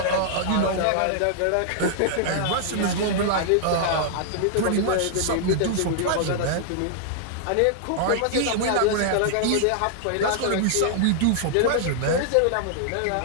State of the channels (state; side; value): different; both; correlation -0.01